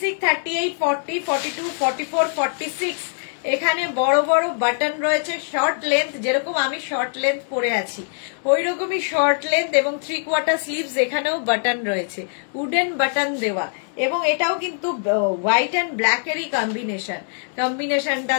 38, 40, 42, 44, 46। এখানে বড় বড় বাটন রয়েছে, শর্ট লেন্থ, যেরকম আমি শর্ট লেন্থ পরে আছি ওই রকমই শর্ট লেন্থ, এবং 3/4 স্লিভস, এখানেও বাটন রয়েছে, উডেন বাটন দেওয়া, এবং এটাও কিন্তু হোয়াইট অ্যান্ড ব্ল্যাক এরই কম্বিনেশন, কম্বিনেশনটা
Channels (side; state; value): right; silent; digital silence